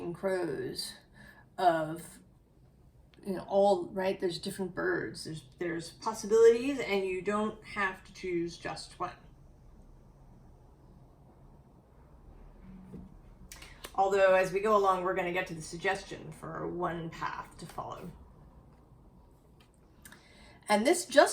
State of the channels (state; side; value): identical; both; correlation 1.00